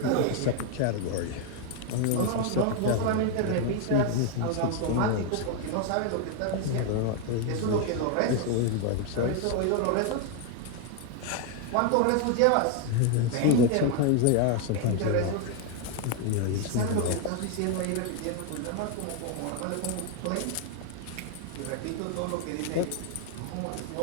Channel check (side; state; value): both; different; correlation 0.01